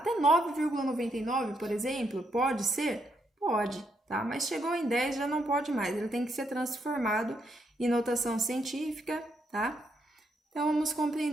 9,99, por exemplo, pode ser? Pode, tá? Mas chegou em 10 já não pode mais, ele tem que ser transformado em notação científica, tá? Então, vamos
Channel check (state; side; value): normal; both; correlation 0.77